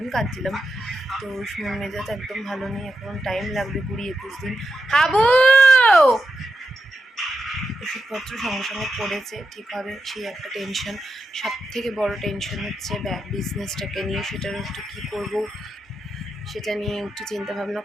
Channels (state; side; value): normal; both; correlation 0.87